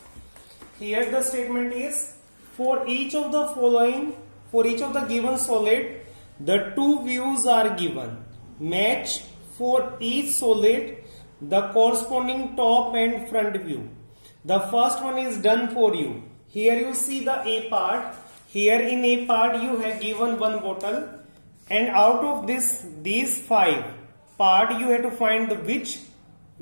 Here the statement is, for each of the following, for each of the given solid, the two views are given. Match for each solid the corresponding top and front view. The first one is done for you. Here you see the A part. Here in A part you have given one bottle, and out of these 5 part you have to find the which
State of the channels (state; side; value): inverted; both; correlation -1.00